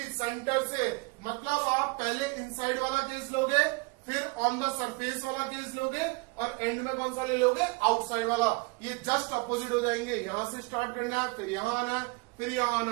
सेंटर से, मतलब आप पहले इनसाइड वाला केस लोगे, फिर ऑन द सरफेस वाला केस लोगे, और एंड में कौन सा ले लोगे, आउटसाइड वाला। ये जस्ट अपोजिट हो जाएंगे, यहां से स्टार्ट करना है, फिर यहां आना है, फिर यहां आना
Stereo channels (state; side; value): quieter; left; 27.9 dB